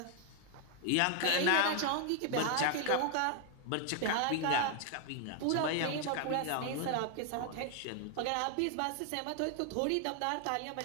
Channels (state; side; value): different; both; correlation 0.01